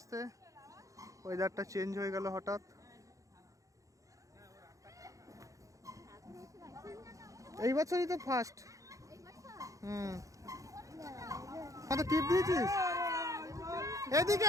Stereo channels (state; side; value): late; left; 0.16 ms